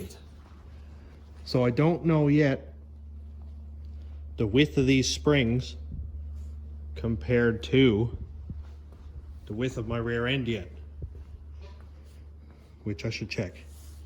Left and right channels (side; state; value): both; identical; correlation 1.00